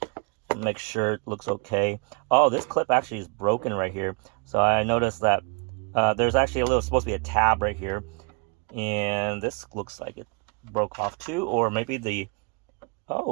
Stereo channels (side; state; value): left; quieter; 34.1 dB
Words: Make sure it looks okay. Oh, this clip actually is broken right here. So I noticed that there's actually a little, supposed to be a tab right here, and this looks like it broke off too, or maybe the,